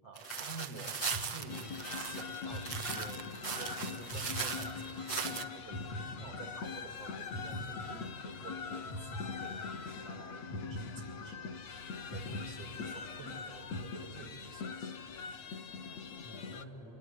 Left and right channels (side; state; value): right; late; 7.7 ms